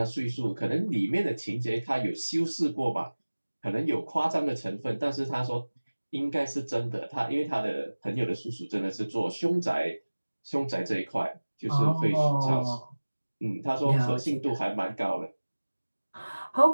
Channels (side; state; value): both; inverted; correlation -1.00